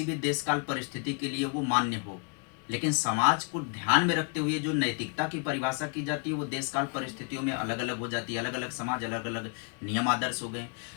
भी देश काल परिस्थिति के लिए वो मान्य हो। लेकिन समाज को ध्यान में रखते हुए जो नैतिकता की परिभाषा की जाती है वो देश काल परिस्थितियों में अलग अलग हो जाती है। अलग अलग समाज, अलग अलग नियम आदर्श हो गए।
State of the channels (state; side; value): quieter; right; 34.9 dB